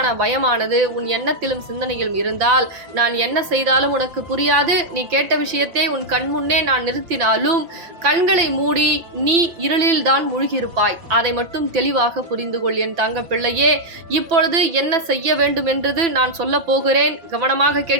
பயமானது உன் எண்ணத்திலும் சிந்தனையிலும் இருந்தால் நான் என்ன செய்தாலும் உனக்கு புரியாது. நீ கேட்ட விஷயத்தை உன் கண் முன்னே நான் நிறுத்தினாலும் கண்களை மூடி நீ இருளில் தான் மூழ்கியிருப்பாய். அதை மட்டும் தெளிவாக புரிந்து கொள் என் தங்க பிள்ளையே. இப்பொழுது என்ன செய்ய வேண்டும் என்றது நான் சொல்ல போகிறேன். கவனமாக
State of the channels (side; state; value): left; late; 5.9 ms